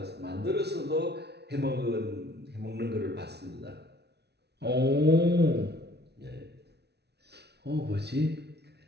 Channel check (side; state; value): left; late; 0.49 ms